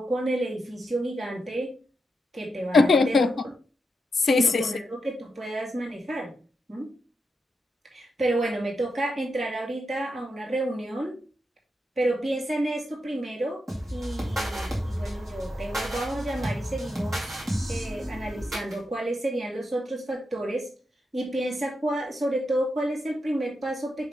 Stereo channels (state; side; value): normal; both; correlation 0.85